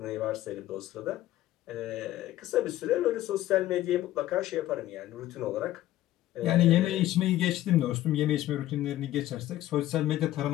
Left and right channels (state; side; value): quieter; right; 14.4 dB